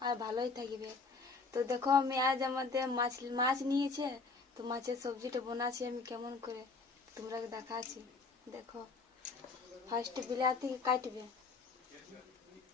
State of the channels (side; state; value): right; quieter; 4.2 dB